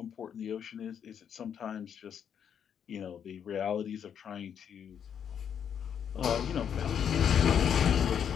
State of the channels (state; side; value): quieter; right; 8.3 dB